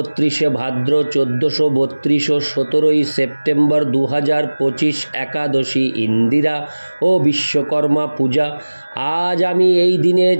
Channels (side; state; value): both; inverted; correlation -1.00